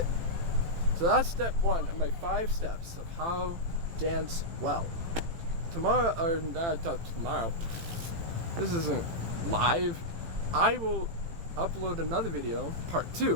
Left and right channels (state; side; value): late; left; 18 ms